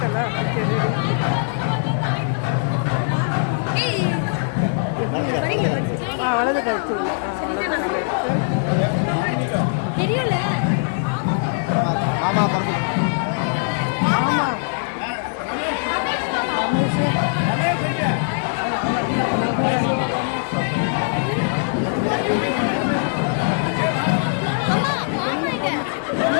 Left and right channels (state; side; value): silent; right; digital silence